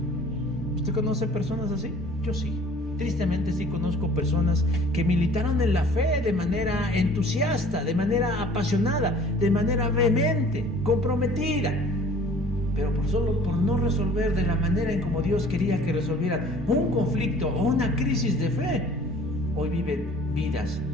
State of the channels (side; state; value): both; normal; correlation 0.50